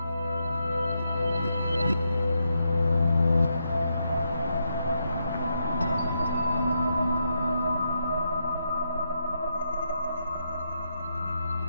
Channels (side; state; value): both; inverted; correlation -0.81